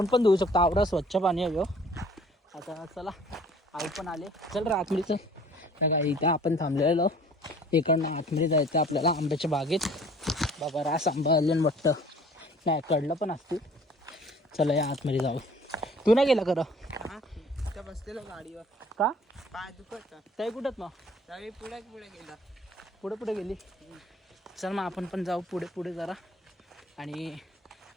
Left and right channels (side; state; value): both; normal; correlation 0.52